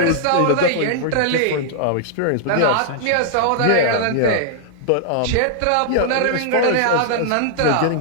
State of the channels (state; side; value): different; both; correlation -0.01